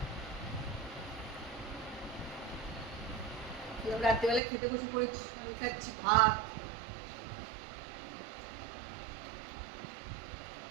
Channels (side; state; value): left; drops out; at 4.4 s